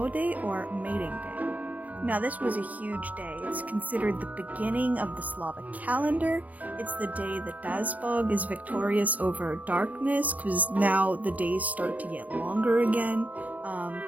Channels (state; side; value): late; left; 0.076 ms